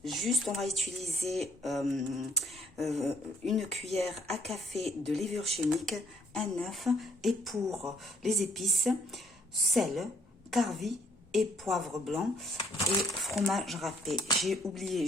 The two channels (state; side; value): normal; both; correlation 0.65